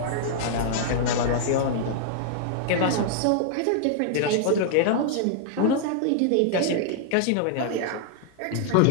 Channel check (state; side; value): different; both; correlation -0.01